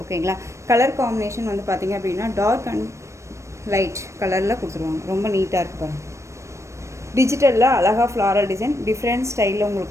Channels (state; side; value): late; left; 0.14 ms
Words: ஓகேங்களா, கலர் காம்பினேஷன் வந்து பார்த்தீங்க அப்படின்னா டார்க் அண்ட் லைட் கலரில் கொடுத்துருவாங்க. ரொம்ப நீட்டாக இருக்குது பாருங்கள். டிஜிட்டலில் அழகாக ஃப்ளாரல் டிசைன், டிஃப்ரெண்ட் ஸ்டைலில்